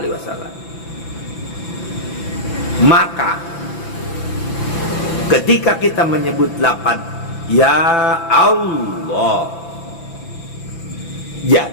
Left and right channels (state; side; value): late; right; 5.9 ms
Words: wasallam. Maka ketika kita menyebut lapan ya Allah,